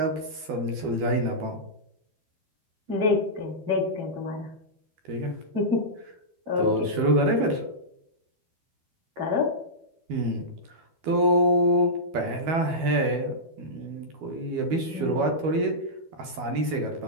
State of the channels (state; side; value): late; left; 12 ms